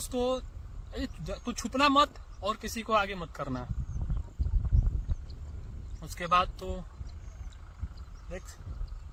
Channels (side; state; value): both; identical; correlation 1.00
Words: को तू छुपना मत और किसी को आगे मत करना। उसके बाद तो देख